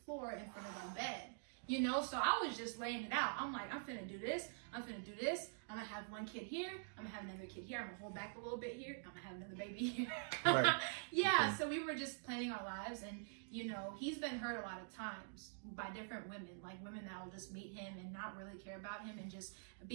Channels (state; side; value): silent; left; digital silence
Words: in front of our bed. You know, so I was just laying it out. I'm like, I'm finna do this. I'm finna do this. I'm gonna have one kid here. I'm gonna have another kid here. I'm gonna hold back a little bit here. I'm gonna have another baby here. Right. Yeah, so we were just planning our lives. And, you know, he's been hurt a lot of times by different women, like women that will just meet him and not really care about him and just